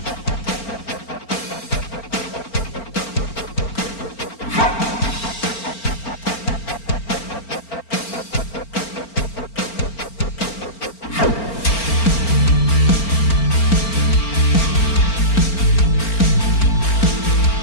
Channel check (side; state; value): right; late; 4.4 ms